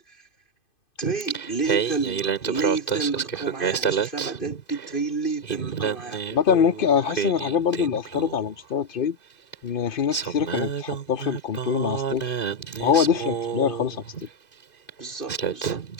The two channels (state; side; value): late; right; 2.5 ms